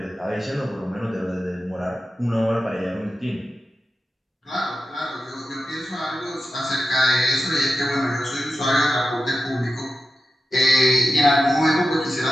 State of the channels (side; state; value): both; normal; correlation 0.91